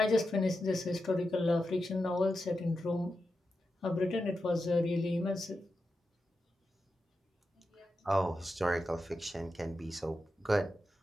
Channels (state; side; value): normal; both; correlation 0.89